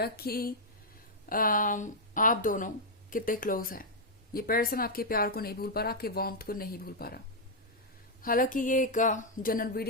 कि आप दोनों कितने क्लोज हैं। ये पर्सन आपके प्यार को नहीं भूल पा रहा, आपके वार्मथ को नहीं भूल पा रहा। हालांकि ये एक जनरल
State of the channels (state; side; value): normal; both; correlation -0.04